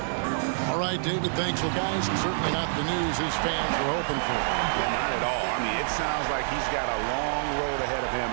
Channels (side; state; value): left; silent; digital silence